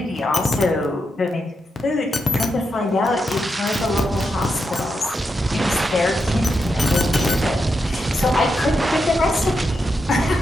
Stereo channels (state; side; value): normal; both; correlation 0.85